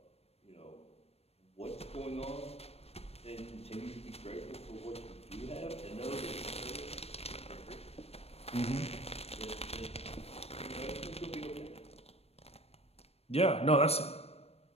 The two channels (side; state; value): right; late; 0.29 ms